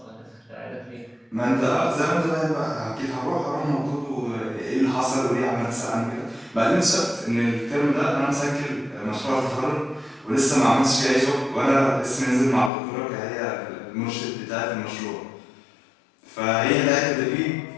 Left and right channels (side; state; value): right; drops out; at 12.7 s